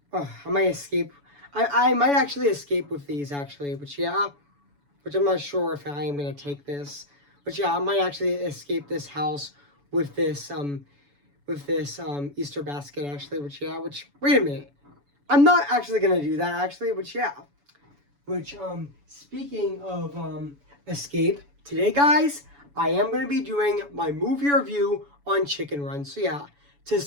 might escape. I might actually escape with these, actually, which I'm not sure if I am going to take this. But I might actually escape this house with this, Easter basket, actually, wait a minute. I'm not actually going to do that, actually, speaking of escape, today, guys, I am going to be doing my movie review on Chicken Run. So to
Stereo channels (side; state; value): left; late; 7.0 ms